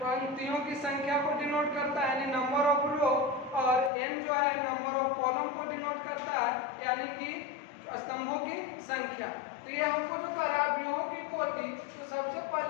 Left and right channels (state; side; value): drops out; right; at 3.9 s